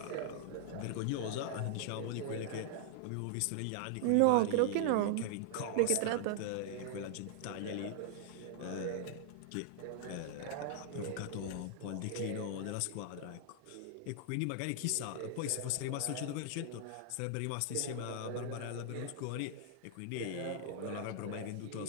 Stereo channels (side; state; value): both; different; correlation -0.01